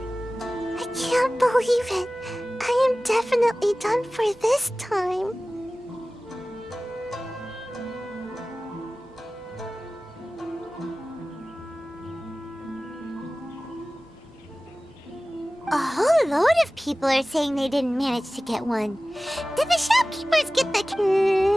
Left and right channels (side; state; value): both; normal; correlation 0.97